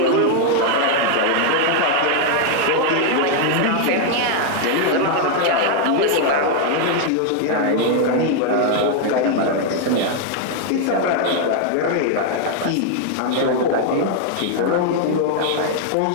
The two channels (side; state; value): both; different; correlation 0.00